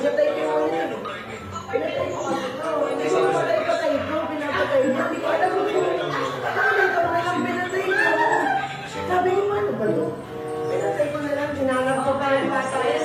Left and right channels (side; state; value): both; identical; correlation 1.00